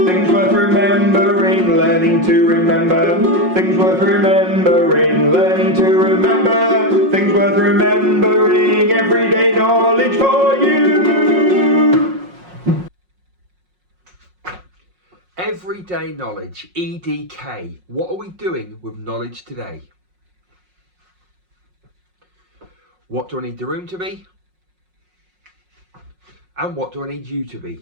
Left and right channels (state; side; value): late; left; 5.5 ms